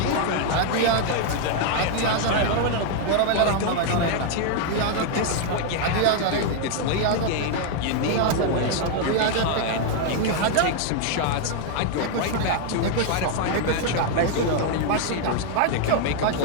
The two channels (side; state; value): both; different; correlation 0.00